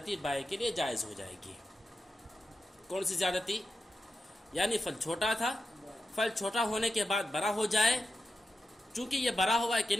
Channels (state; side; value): normal; both; correlation 0.90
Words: بائع کے لیے جائز ہو جائے گی۔ کون سی زیادتی؟ یعنی پھل چھوٹا تھا، پھل چھوٹا ہونے کے بعد بڑا ہو جائے، چونکہ یہ بڑا ہوا ہے کن